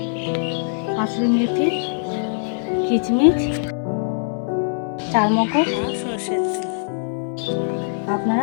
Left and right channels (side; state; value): right; silent; digital silence